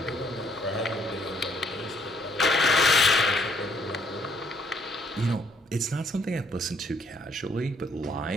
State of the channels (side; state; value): both; normal; correlation 0.67